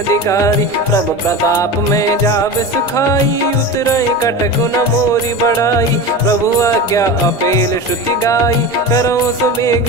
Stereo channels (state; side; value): noise; right; rumble, 29 dB below the sound